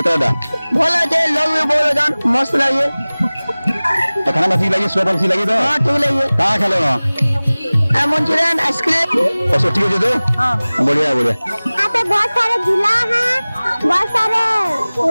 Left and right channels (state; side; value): inverted; both; correlation -0.99